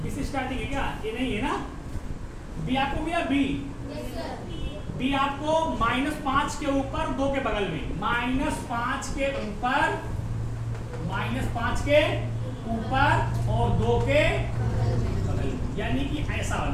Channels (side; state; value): both; identical; correlation 1.00